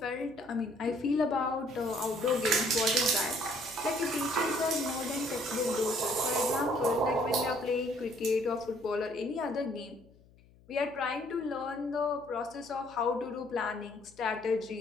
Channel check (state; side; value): noise; left; hum, 27 dB below the sound